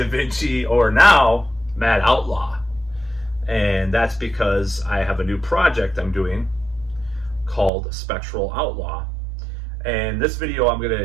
Vinci, or now Mad Outlaw. And that's because I have a new project I'm doing called Spectral Outlaw. And this video, I'm going to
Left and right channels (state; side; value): drops out; left; at 7.7 s